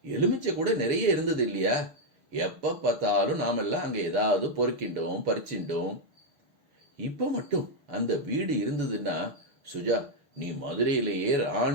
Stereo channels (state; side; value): late; left; 6.6 ms